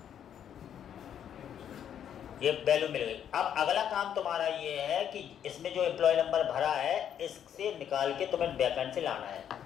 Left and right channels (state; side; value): quieter; right; 9.3 dB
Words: ये वैल्यू मिल गई। अब अगला काम तुम्हारा ये है कि इसमें जो एम्प्लॉय नंबर भरा है इससे निकाल के तुम्हें बैकएंड से लाना है।